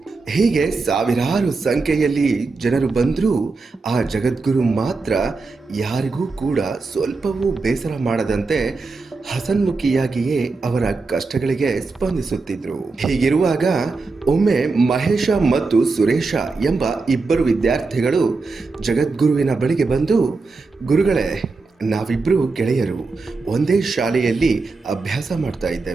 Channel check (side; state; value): left; quieter; 4.0 dB